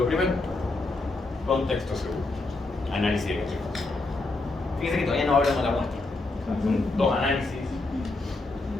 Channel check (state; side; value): quieter; right; 3.2 dB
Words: primero, contexto segundo, análisis de contexto. Fíjense que todavía no hablamos de la muestra, son 2 análisis.